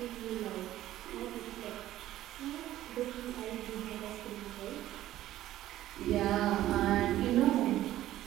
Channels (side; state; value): left; quieter; 13.9 dB